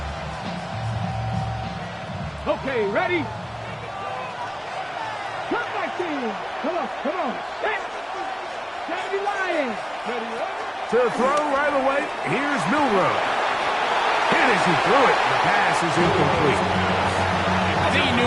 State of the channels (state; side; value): identical; both; correlation 1.00